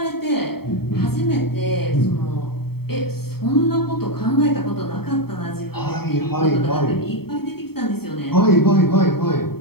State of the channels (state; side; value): late; right; 0.95 ms